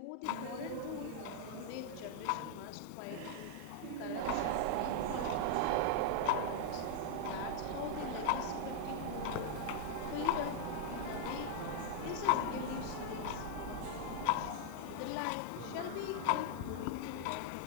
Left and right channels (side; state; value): both; different; correlation -0.01